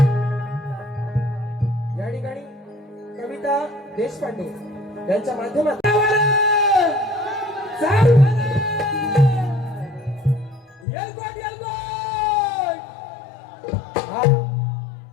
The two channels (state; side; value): drops out; right; at 10.9 s